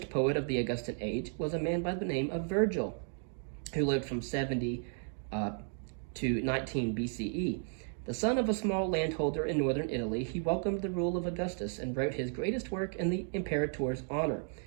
poet of the Augustan age was a man by the name of Virgil, who lived from 70 to 19 B.C.E. The son of a small landholder in northern Italy, he welcomed the rule of Augustus and wrote his greatest work in the imperator's honor.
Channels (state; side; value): silent; left; 55 dB below the other